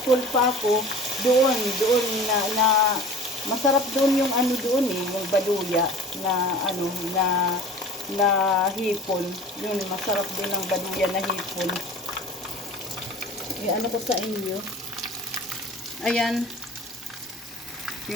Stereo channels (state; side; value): normal; both; correlation 0.42